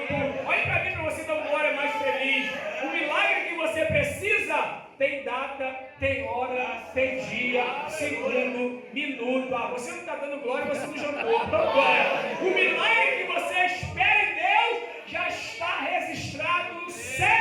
Olha para mim para você dar uma hora mais feliz. O milagre que você precisa tem data, tem hora, tem dia, segundo, minuto. Você não está dando glória, você não jantou. Então, glória. O milagre que você espera em Deus já está registrado no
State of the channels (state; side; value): identical; both; correlation 1.00